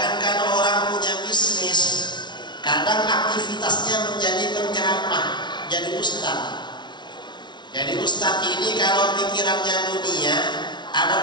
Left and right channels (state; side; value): late; right; 0.21 ms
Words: orang punya bisnis, kadang aktivitasnya menjadi penceramah, jadi ustaz. Jadi ustaz ini kalau pikirannya dunia, ada